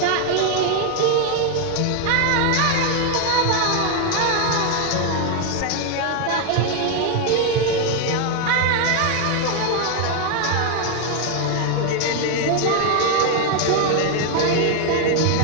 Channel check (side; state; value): both; different; correlation 0.01